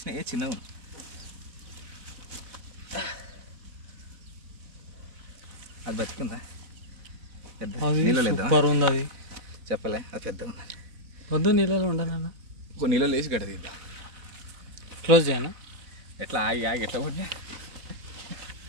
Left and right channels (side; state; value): left; late; 4.0 ms